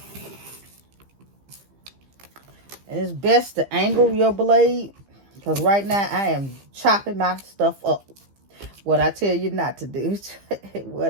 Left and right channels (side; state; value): left; late; 15 ms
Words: And it's best to angle your blade, because right now I am chopping my stuff up. What I tell you not to do.